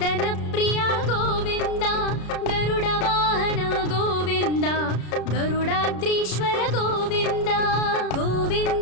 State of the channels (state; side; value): late; right; 33 ms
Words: ಪ್ರಿಯ ಗೋವಿಂದ ಗರುಡ ವಾಹನ ಗೋವಿಂದ ಗರುಡಾದ್ರೀಶ್ವರ ಗೋವಿಂದ